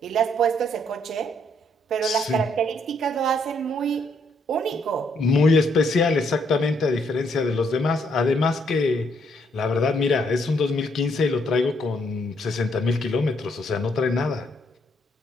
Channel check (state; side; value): normal; both; correlation 0.72